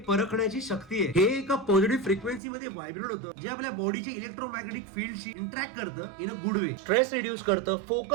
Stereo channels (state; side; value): drops out; left; at 2.4 s